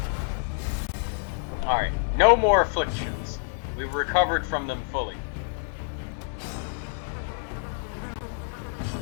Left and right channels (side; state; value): right; silent; digital silence